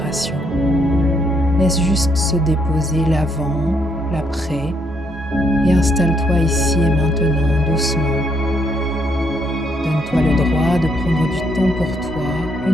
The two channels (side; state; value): both; normal; correlation 0.73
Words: Laisse juste se déposer l'avant, l'après, et installe-toi ici et maintenant doucement. Donne-toi le droit de prendre du temps pour toi,